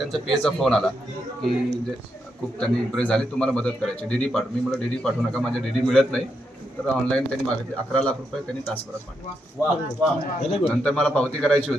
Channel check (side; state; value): both; normal; correlation 0.82